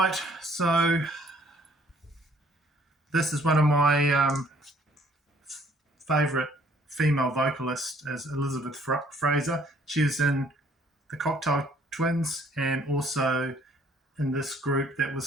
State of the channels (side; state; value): both; normal; correlation 0.61